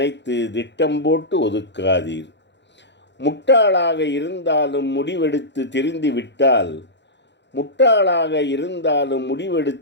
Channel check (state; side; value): late; right; 0.52 ms